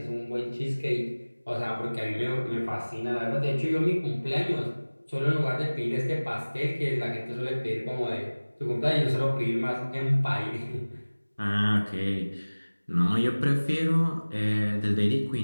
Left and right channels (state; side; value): inverted; both; correlation -1.00